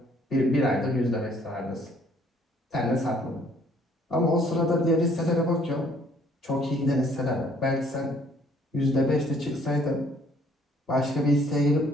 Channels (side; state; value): both; normal; correlation 0.61